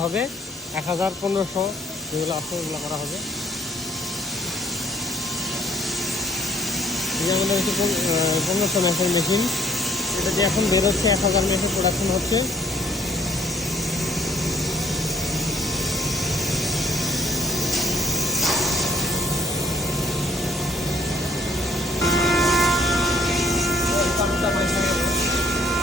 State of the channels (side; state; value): both; normal; correlation 0.61